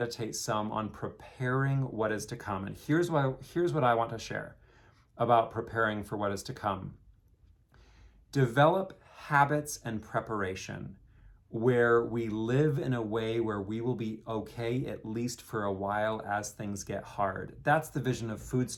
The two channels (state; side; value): identical; both; correlation 1.00